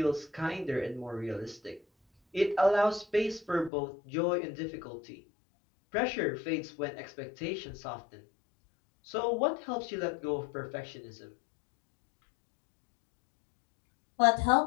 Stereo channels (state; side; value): drops out; right; at 3.7 s